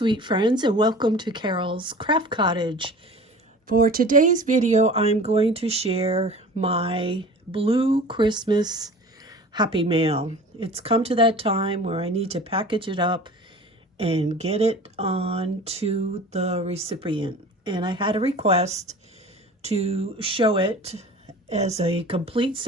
friends, and welcome to Carol's Craft Cottage. For today's video I'm going to share my blue Christmas Happy Mail. It's come to that time where I need to package it up and get it on to the recipient. And I had a request to show it as a complete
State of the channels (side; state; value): both; normal; correlation 0.41